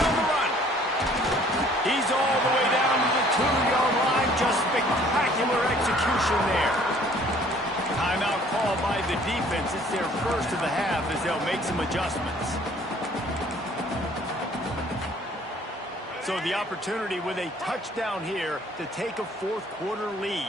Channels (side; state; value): both; normal; correlation 0.56